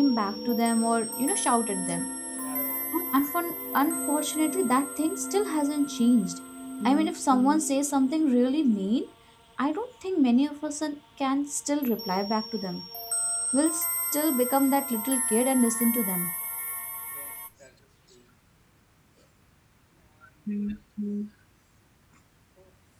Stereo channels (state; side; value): identical; both; correlation 1.00